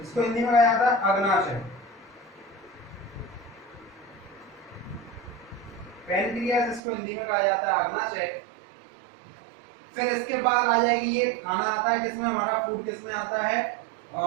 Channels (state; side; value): drops out; left; at 6.8 s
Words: इसको हिंदी में कहा जाता है अग्नाशय। पैनक्रियाज इसको हिंदी में कहा जाता है अग्नाशय। फिर इसके बाद आ जाएगी, ये खाना आता है किसमें, हमारा फूड किसमें आता है,